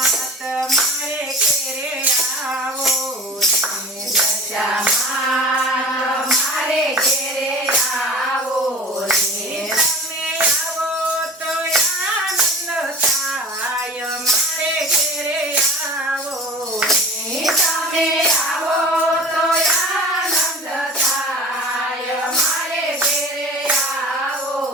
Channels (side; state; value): both; normal; correlation 0.39